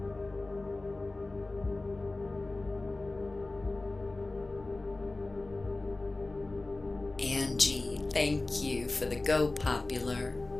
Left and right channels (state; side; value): quieter; right; 3.1 dB